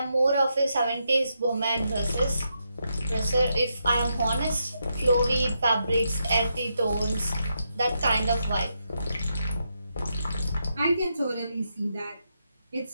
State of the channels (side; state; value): both; inverted; correlation -0.83